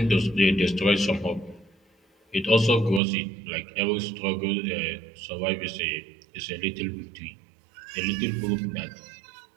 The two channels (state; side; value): drops out; left; at 3.0 s